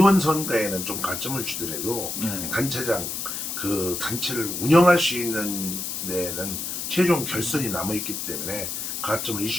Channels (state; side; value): noise; left; hiss, 4 dB below the sound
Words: 선거에는 좀 가점을 주더라도 네. 단체장 그 단체를 운영할 수 있는 데는 최종 결선이 남아 있기 때문에 가점을